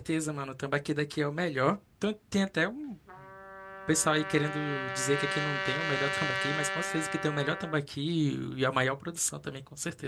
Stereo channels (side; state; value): both; identical; correlation 1.00